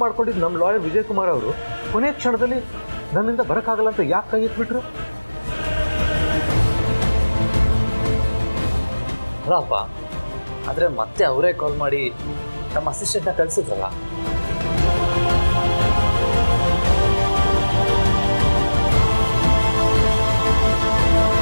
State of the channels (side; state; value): both; inverted; correlation -1.00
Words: ಮಾಡ್ಕೊಂಡಿದ್ದು ನಮ್ಮ ಲಾಯರ್ ವಿಜಯ್ ಕುಮಾರ್ ಅವರು ಕೊನೆ ಕ್ಷಣದಲ್ಲಿ ನನ್ನಿಂದ ಬರೋಕ್ಕಾಗಲ್ಲ ಅಂತ ಯಾಕೆ ಕೈ ಎತ್ಬಿಟ್ರು? ಅಲ್ಲಪ್ಪ, ಆದರೆ ಮತ್ತೆ ಅವರೇ ಕಾಲ್ ಮಾಡಿ ನಮ್ಮ ಅಸಿಸ್ಟೆಂಟ್ನ ಕಳಿಸಿದ್ರಲ್ಲ.